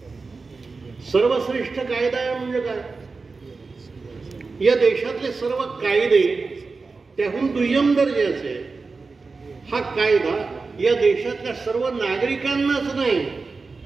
सर्वश्रेष्ठ कायदा आहे म्हणजे काय? या देशातले सर्व कायदे त्याहून दुय्यम दर्जाचे. हा कायदा या देशातल्या सर्व नागरिकांनाच नाही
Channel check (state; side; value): quieter; left; 4.2 dB